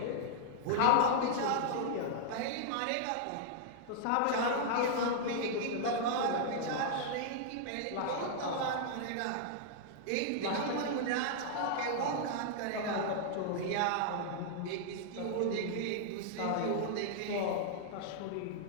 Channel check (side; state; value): both; different; correlation -0.01